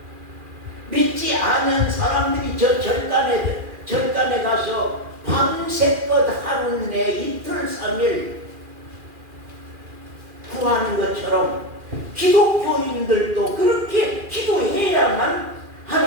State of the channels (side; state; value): left; late; 2.4 ms